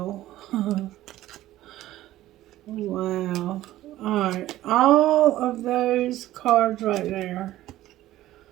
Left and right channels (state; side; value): quieter; left; 14.8 dB